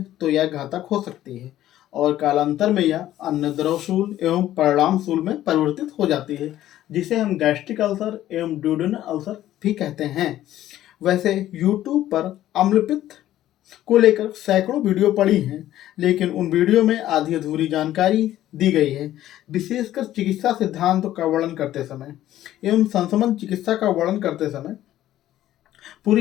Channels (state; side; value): quieter; right; 13.3 dB